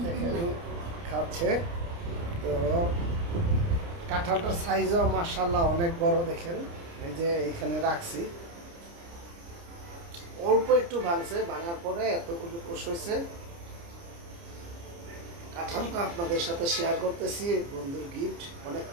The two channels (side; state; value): left; late; 29 ms